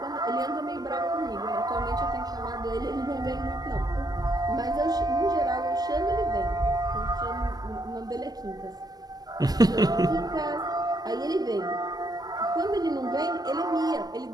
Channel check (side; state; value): left; late; 0.19 ms